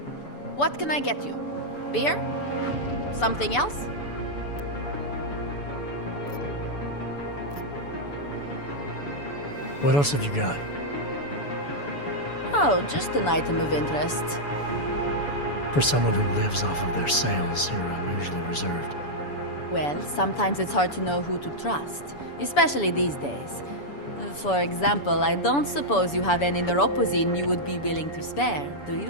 What can I get you? Beer? Something else? What else have you got? Oh, just an item of interest. For someone who lives off of their sales, you're unusually reserved. Well, sometimes it's hard to know who to trust, especially these days. For example, I don't suppose you have any neuropozyne you would be willing to spare, do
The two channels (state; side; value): late; right; 7.0 ms